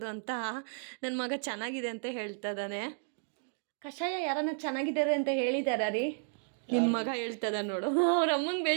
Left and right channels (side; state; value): left; silent; 56 dB below the other